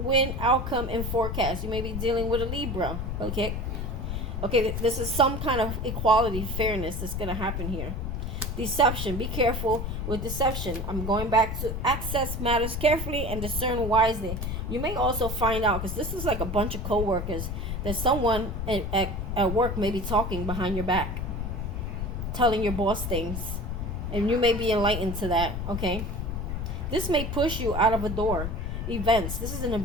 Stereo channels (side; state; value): left; noise; rumble, 3 dB below the sound